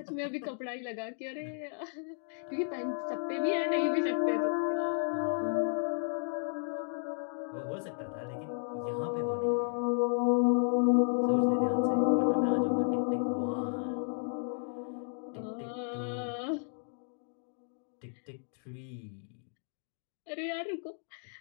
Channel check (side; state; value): right; silent; 56 dB below the other